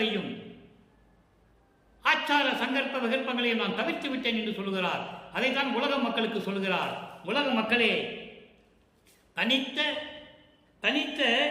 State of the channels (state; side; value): identical; both; correlation 1.00